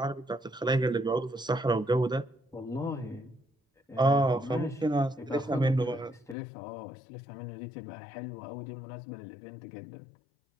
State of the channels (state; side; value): drops out; right; at 6.4 s